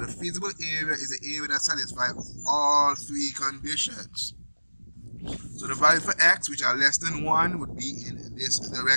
feasible area is the area that satisfies all 3 conditions. So the value for x, which are less than 1, would be in this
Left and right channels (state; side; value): inverted; both; correlation -1.00